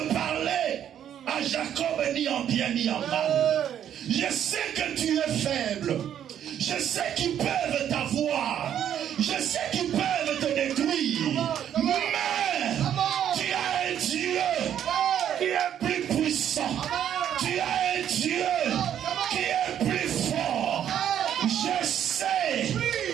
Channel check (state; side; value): quieter; left; 9.9 dB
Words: parler à Jacob ni en bien ni en mal. Je sais que tu es faible. Je sais qu'ils peuvent t'avoir. Je sais qu'ils peuvent te détruire. Mais tu as un Dieu qui est plus puissant. Tu as un Dieu qui est plus fort. Je sais